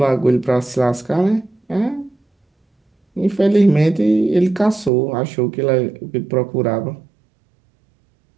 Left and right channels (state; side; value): drops out; left; at 4.9 s